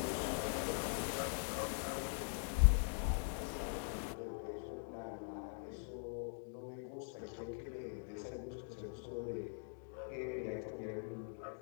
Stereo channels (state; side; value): silent; right; digital silence